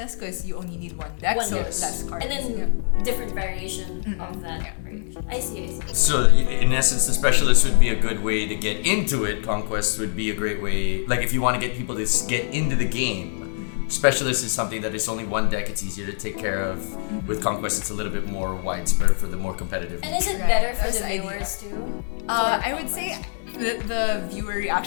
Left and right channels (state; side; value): silent; right; 63 dB below the other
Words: because you only need one deck, so less cards. And then different variation of that variation. I see. So in essence, the specialist would be a good way to get into it. Conquest would be a great way, like if you want to get people to get into the game. Specialist is something that is only one deck, it's easier to take care of. With Conquest, it's a little bit more widespread for the more competitive. And is it better for the viewers too? I would say the viewer